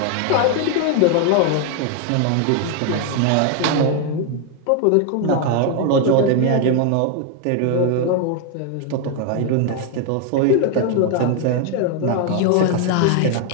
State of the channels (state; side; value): different; both; correlation 0.01